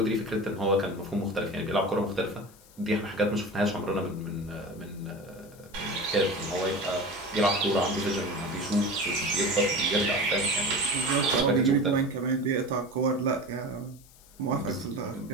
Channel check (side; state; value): left; noise; hiss, 25 dB below the sound